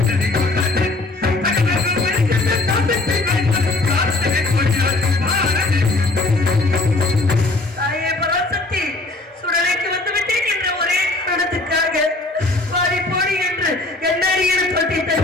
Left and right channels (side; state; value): right; quieter; 3.0 dB